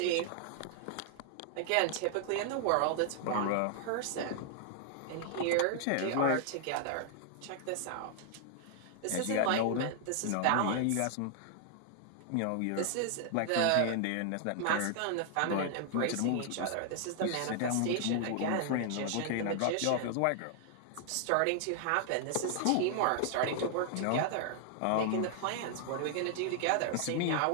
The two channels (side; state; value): both; different; correlation 0.00